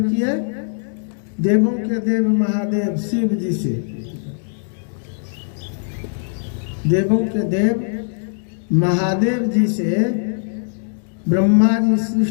किए? देवों के देव महादेव शिव जी से। देवों के देव महादेव जी से ब्रह्मा जी,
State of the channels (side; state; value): right; silent; digital silence